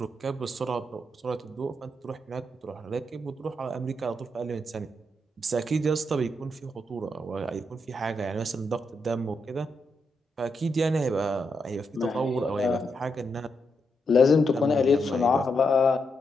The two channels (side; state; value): both; normal; correlation 0.82